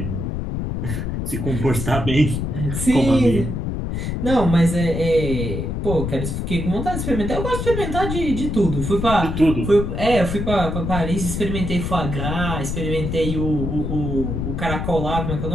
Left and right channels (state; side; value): noise; left; rumble, 3 dB below the sound